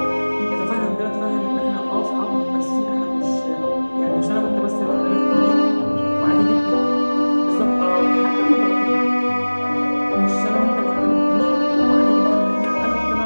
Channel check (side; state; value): both; inverted; correlation -1.00